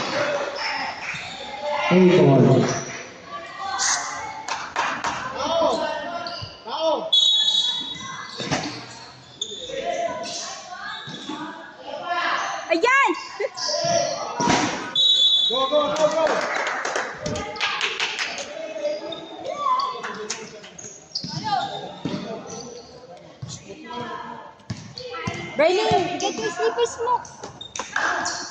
Hey, boy. Tao. Ayan! Go, go, go, go. Berlin, get your slippers mo.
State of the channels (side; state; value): both; identical; correlation 1.00